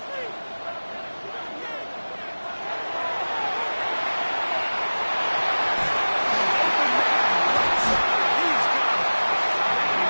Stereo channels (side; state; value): both; inverted; correlation -1.00